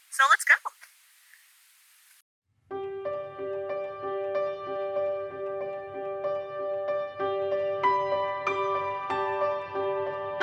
So let's go!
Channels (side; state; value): both; identical; correlation 1.00